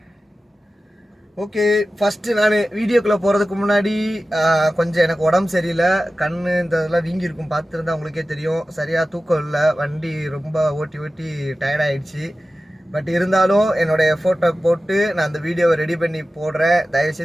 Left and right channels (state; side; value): normal; both; correlation 0.95